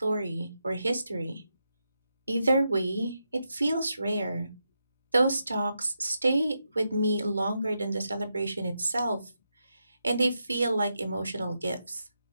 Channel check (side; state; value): both; inverted; correlation -0.85